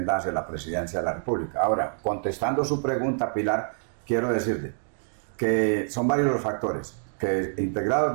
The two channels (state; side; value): silent; left; 60 dB below the other